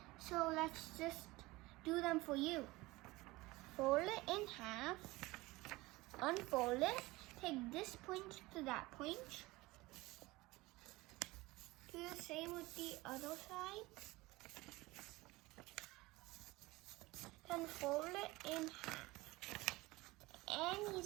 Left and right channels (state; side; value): quieter; left; 20.8 dB